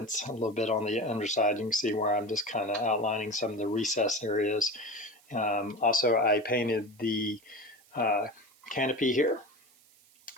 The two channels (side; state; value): right; noise; hiss, 29 dB below the sound